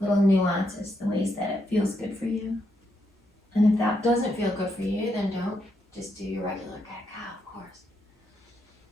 nuances, the ways that it feels good for you. And if that doesn't feel good for you, then don't. Just do your regular cat-cow, of course.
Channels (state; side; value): normal; both; correlation 0.79